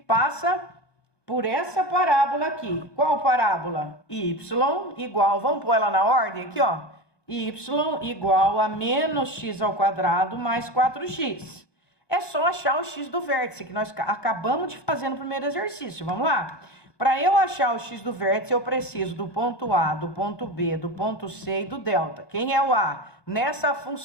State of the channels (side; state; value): right; late; 1.2 ms